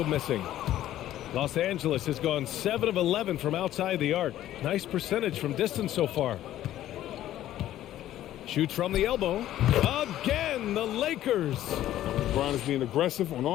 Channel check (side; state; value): right; quieter; 13.0 dB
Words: missing. Los Angeles has gone 7 of 11 from outside the arc. Nice percentage from distance so far. Shoots from the elbow. Again, the Lakers. LeBron is being aggressive on